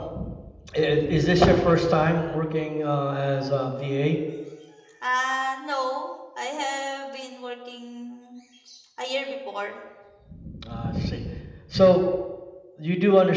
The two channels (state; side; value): identical; both; correlation 1.00